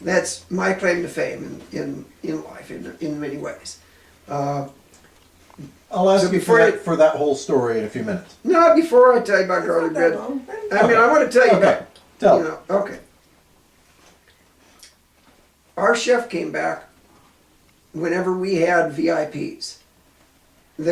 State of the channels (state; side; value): identical; both; correlation 1.00